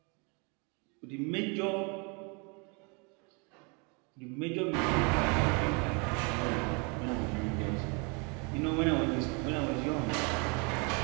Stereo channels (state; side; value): quieter; left; 32.7 dB